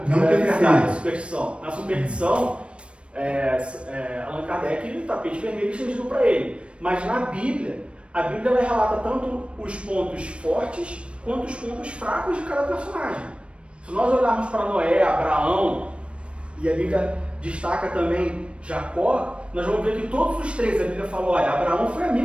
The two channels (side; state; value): left; late; 0.059 ms